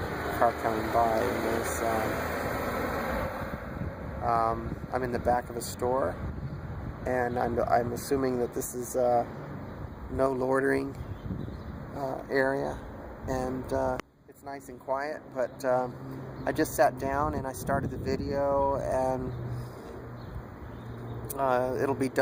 car coming by, and there's I'm in the back of a store, and I'm assuming that this is no loitering area, and it's nice and quiet. But I just sat down and I started the video, and it'll be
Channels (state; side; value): identical; both; correlation 1.00